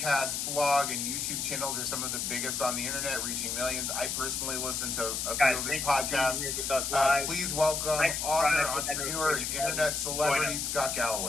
blog, and YouTube channels are some of the biggest on the internet, reaching millions. I personally listen to a few of his podcasts. Please welcome author, entrepreneur, and internet celebrity, Scott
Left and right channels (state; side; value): noise; left; hiss, 2 dB below the sound